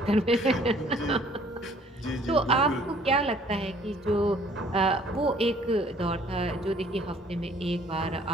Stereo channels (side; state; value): both; normal; correlation 0.58